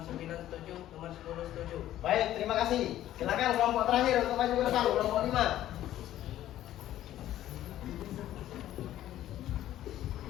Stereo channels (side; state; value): right; quieter; 13.0 dB